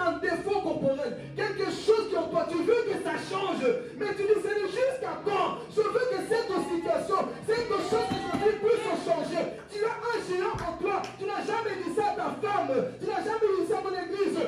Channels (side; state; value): both; identical; correlation 1.00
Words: un défaut corporel. Quelque chose qui en toi, tu veux que ça change. Mais tu dis, c'est jusqu'à quand? Je veux que cette situation, cette chose que je veux puisse changer. Tu as un géant en toi. Tu n'as jamais dit ça à ta femme. Tu n'as jamais dit ça à ton église.